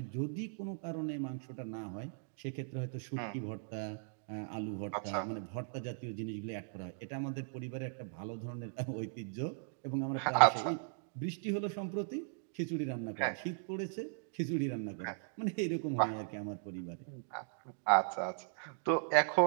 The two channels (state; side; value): silent; left; digital silence